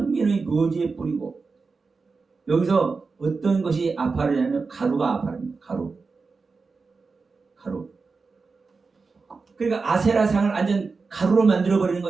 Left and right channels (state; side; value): quieter; left; 4.4 dB